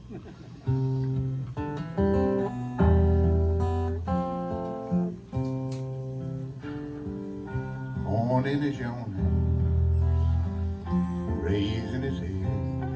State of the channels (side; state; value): both; identical; correlation 1.00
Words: Morning is yawning, raising his head,